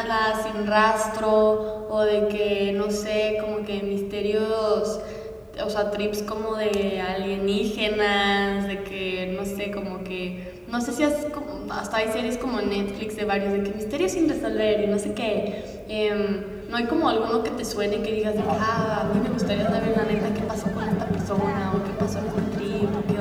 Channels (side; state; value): both; identical; correlation 1.00